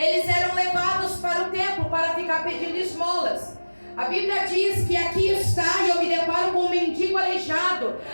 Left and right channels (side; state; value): both; inverted; correlation -1.00